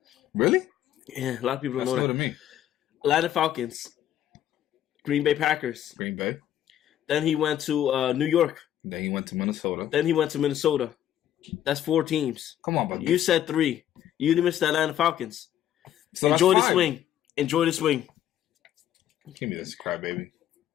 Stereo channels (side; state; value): right; quieter; 11.4 dB